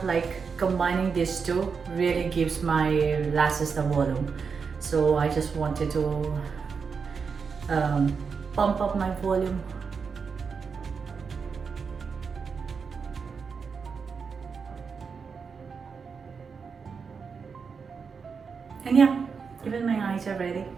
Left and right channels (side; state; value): left; quieter; 5.6 dB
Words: like combining these two really gives my lashes the volume. So I just wanted to pump up my volume. And yeah, even my eyes are ready.